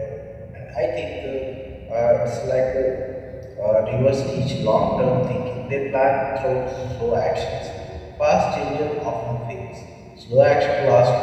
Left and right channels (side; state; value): both; identical; correlation 1.00